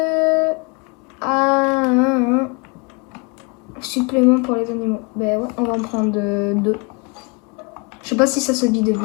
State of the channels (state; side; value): quieter; right; 31.0 dB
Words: Supplément pour les animaux. Ben ouais, on va en prendre 2. Je sais pas si ça se vide